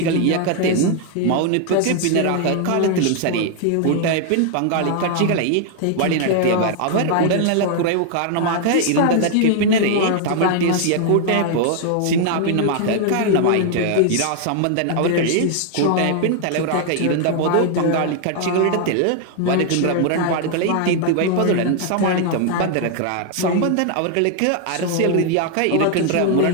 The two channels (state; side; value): different; both; correlation 0.00